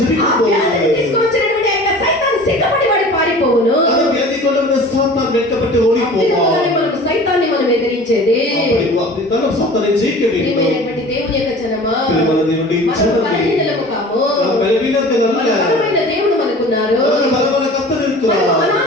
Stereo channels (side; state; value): both; normal; correlation 0.42